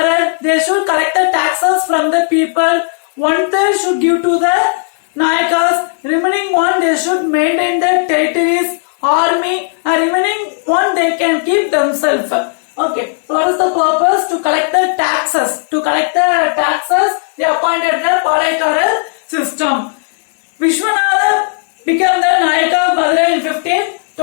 They should collect the taxes from the people. 1/3 should give to the Nayakas. Remaining one they should maintain the territories, army, and remaining one they can keep themselves. Okay, so what is the purpose? To collect the taxes. To collect the taxes, they appointed the Palaikarar system. Vishwanatha became the Nayaka of Madurai in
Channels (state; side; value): silent; right; 70 dB below the other